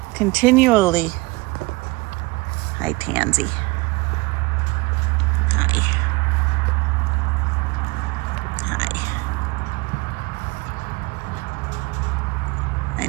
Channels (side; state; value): left; quieter; 24.4 dB